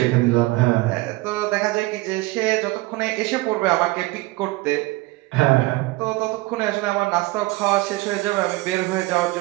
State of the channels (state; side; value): quieter; left; 21.1 dB